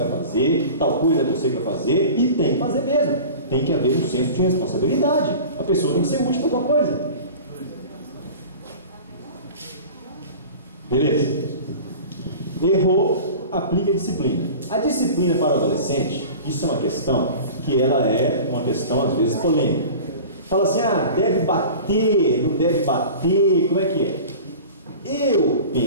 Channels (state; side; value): inverted; both; correlation -0.38